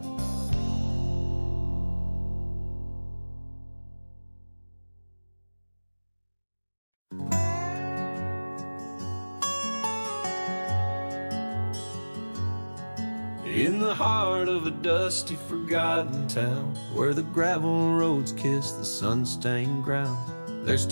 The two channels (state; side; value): inverted; both; correlation -1.00